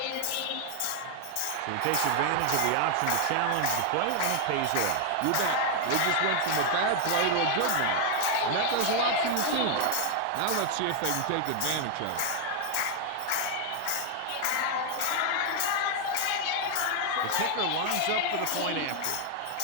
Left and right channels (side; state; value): both; different; correlation 0.00